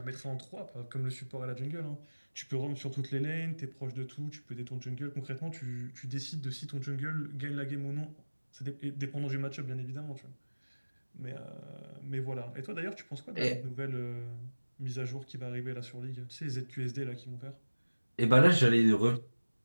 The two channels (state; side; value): inverted; both; correlation -1.00